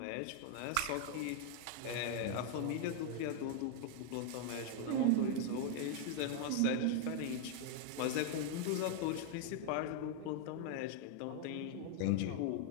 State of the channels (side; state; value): both; different; correlation 0.00